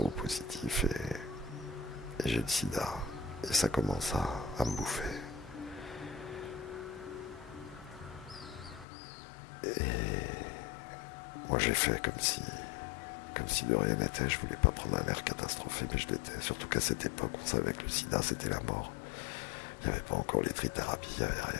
et j'ai le sida. Et ça commence à me bouffer. Et moi j'ai fait comme si de rien n'était. Je voulais pas prendre un air catastrophé, mais je l'étais. Surtout qu'à cette époque, on savait que le sida c'était la mort. Il n'y avait pas encore les trithérapies, il n'y avait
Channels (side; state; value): right; drops out; at 8.8 s